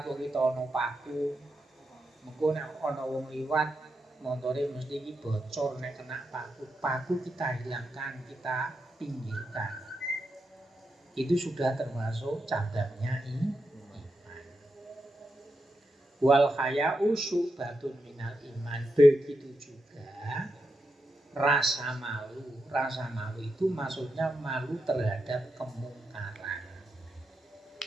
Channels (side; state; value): both; normal; correlation 0.86